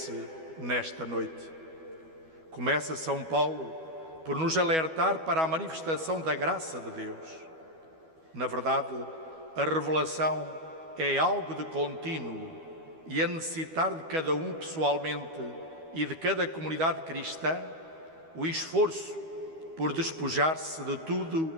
nesta noite. Começa São Paulo por nos alertar para a manifestação da graça de Deus. Na verdade, a revelação é algo de contínuo e a necessitar de cada um pessoalmente e de cada comunidade cristã o esforço por despojar-se de tudo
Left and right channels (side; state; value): left; late; 12 ms